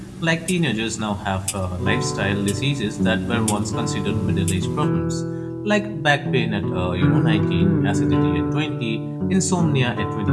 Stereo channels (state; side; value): identical; both; correlation 1.00